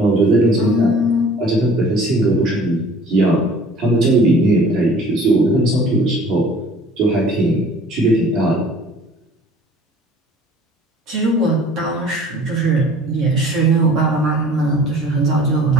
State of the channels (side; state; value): both; normal; correlation 0.50